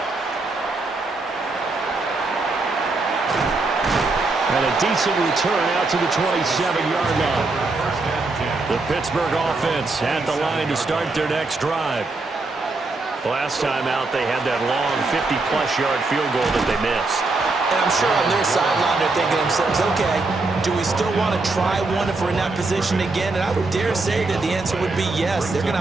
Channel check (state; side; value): quieter; left; 3.4 dB